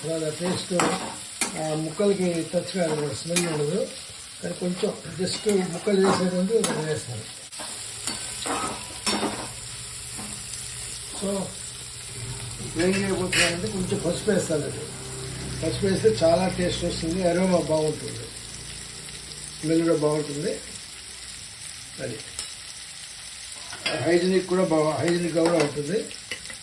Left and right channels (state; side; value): identical; both; correlation 1.00